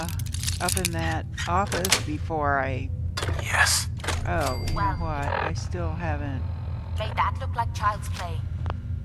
up in that office before I... Yes. Oh, you know what? I still haven't... Made that look like child's play.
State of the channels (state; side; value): identical; both; correlation 1.00